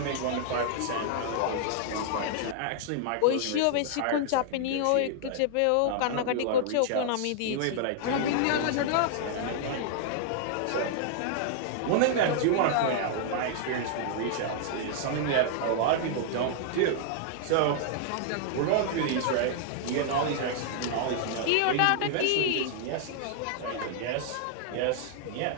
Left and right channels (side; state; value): both; different; correlation -0.01